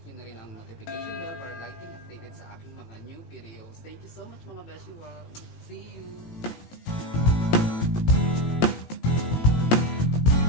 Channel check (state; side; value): late; right; 17 ms